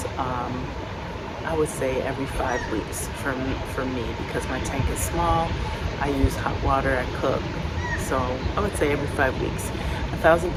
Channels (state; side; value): identical; both; correlation 1.00